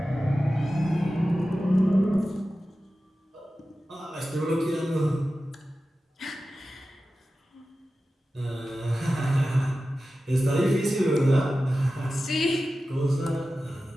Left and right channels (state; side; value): normal; both; correlation 0.94